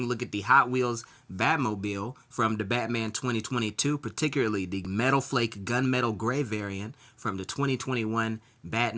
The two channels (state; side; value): identical; both; correlation 1.00